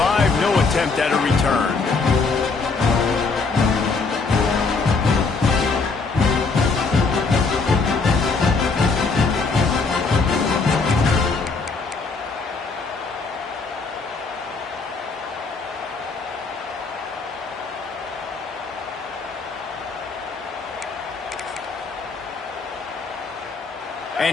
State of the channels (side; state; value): right; quieter; 4.3 dB